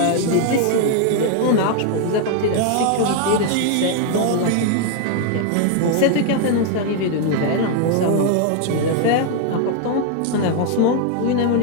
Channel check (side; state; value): both; different; correlation 0.00